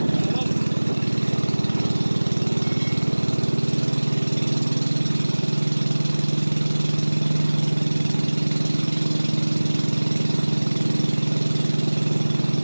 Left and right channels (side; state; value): both; inverted; correlation -1.00